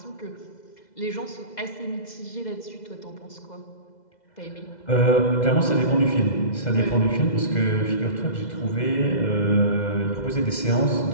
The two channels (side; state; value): right; late; 2.0 ms